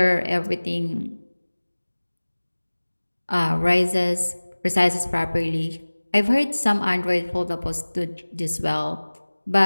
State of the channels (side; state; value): both; inverted; correlation -1.00